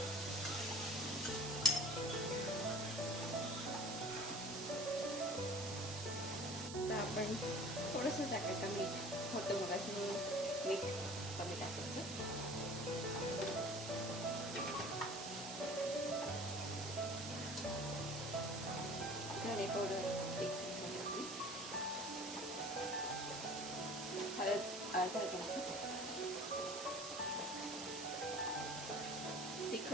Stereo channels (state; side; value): noise; right; hiss, 8 dB below the sound